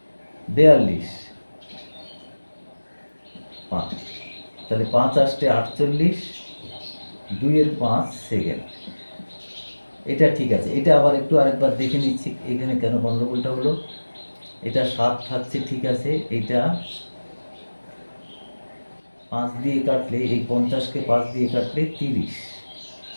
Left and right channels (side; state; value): both; inverted; correlation -1.00